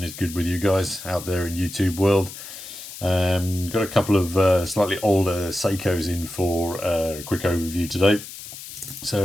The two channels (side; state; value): left; noise; hiss, 13 dB below the sound